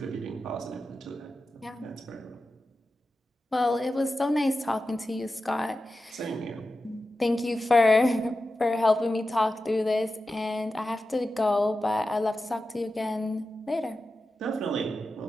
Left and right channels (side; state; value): both; normal; correlation 0.92